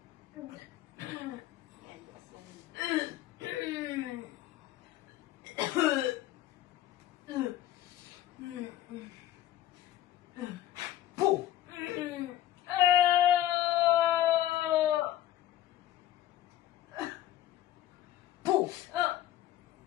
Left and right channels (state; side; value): quieter; right; 13.2 dB